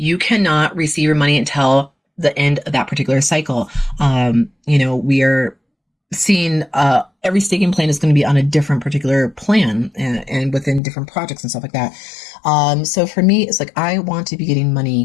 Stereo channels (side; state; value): right; drops out; at 10.8 s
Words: cannot receive your money until the end of that particular cycle. We are seeing every staking plan is going to be on a different particular plan and within different projects and stuff like that. So for me, it's like I want to be getting